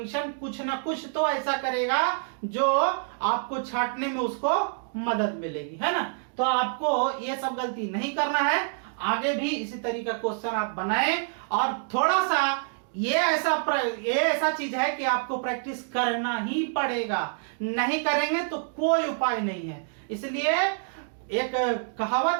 कुछ ना कुछ तो ऐसा करेगा जो आपको छांटने में उसको मदद मिलेगी, है ना। तो आपको ये सब गलती नहीं करना है, आगे भी इसी तरीका क्वेश्चन आप बनाएं। और थोड़ा सा ये ऐसा चीज है कि आपको प्रैक्टिस करना ही पड़ेगा, नहीं करेंगे तो कोई उपाय नहीं है। इसलिए एक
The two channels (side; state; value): left; silent; digital silence